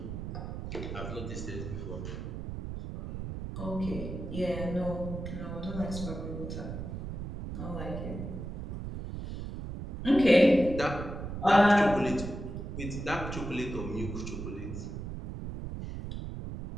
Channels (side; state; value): right; noise; rumble, 7 dB below the sound